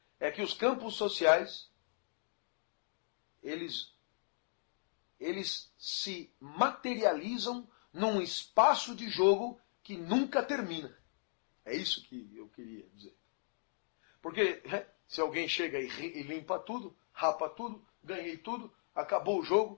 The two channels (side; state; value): right; silent; digital silence